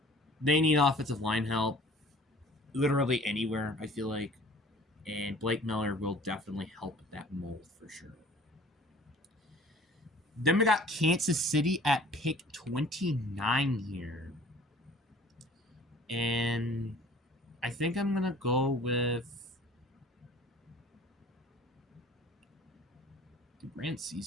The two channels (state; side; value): normal; both; correlation 0.50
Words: They need offensive line help literally anywhere, I feel like, and Blake Miller will definitely help that mold for sure. Then we got Kansas City at pick 29 here. And I think I'm going to go with... Brand